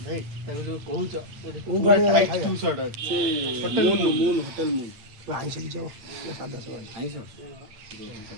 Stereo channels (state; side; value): late; left; 8.9 ms